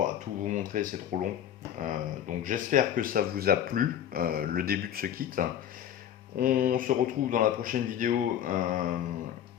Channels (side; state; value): right; quieter; 10.1 dB